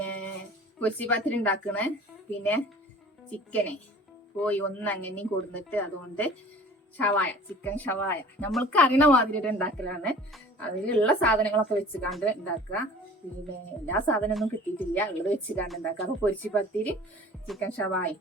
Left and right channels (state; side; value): normal; both; correlation 0.46